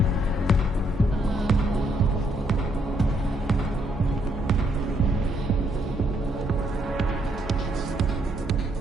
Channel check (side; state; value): both; normal; correlation 0.72